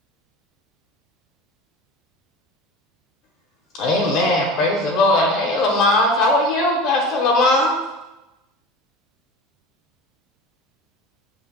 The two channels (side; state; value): both; normal; correlation 0.34